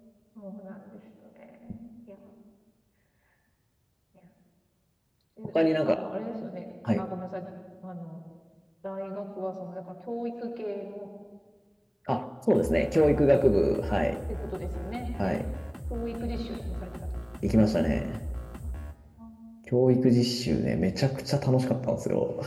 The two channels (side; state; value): both; identical; correlation 1.00